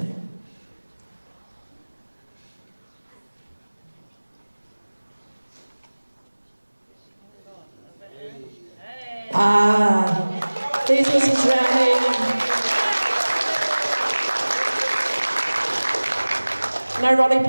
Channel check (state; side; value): inverted; both; correlation -1.00